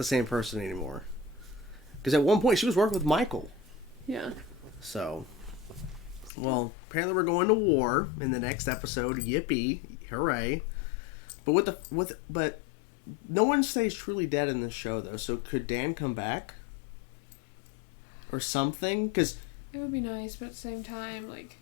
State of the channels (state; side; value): drops out; right; at 6.3 s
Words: same person anymore. Because at one point, she was working with Michael. Yeah. So, well, apparently we're going to war in the next episode. Yippee. Hooray. But but no one stays truly dead in this show, though. So could Dan come back? Or something? Because... It would be nice, but at the same time, like...